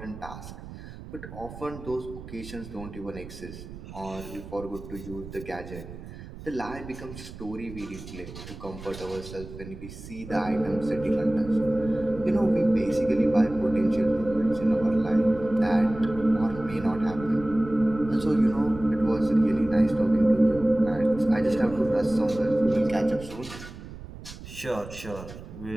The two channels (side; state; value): right; noise; rumble, 14 dB below the sound